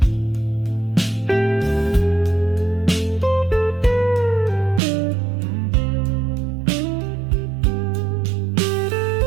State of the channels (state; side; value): drops out; left; at 4.8 s